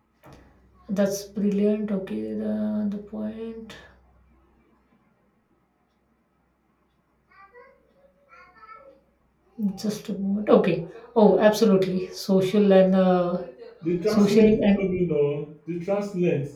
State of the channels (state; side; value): identical; both; correlation 1.00